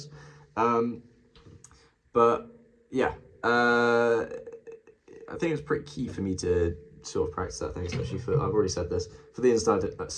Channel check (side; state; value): both; identical; correlation 1.00